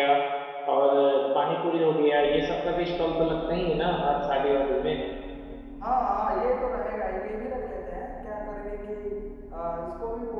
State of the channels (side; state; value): both; identical; correlation 1.00